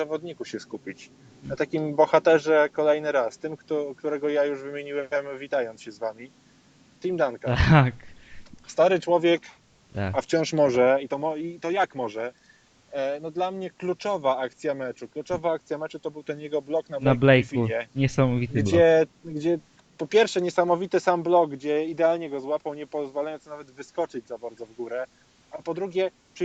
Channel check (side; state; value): both; identical; correlation 1.00